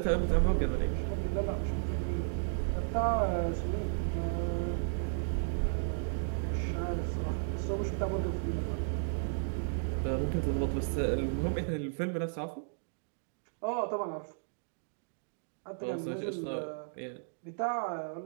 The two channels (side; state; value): left; silent; digital silence